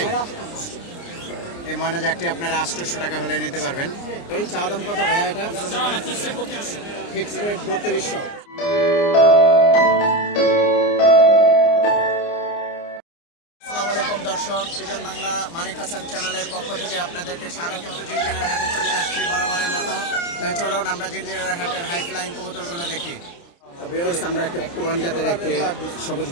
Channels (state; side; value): late; right; 29 ms